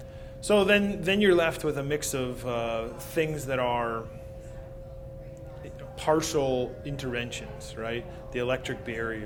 So then you're left with a mix of things that are partial interventions, right? The electric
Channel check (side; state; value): both; identical; correlation 1.00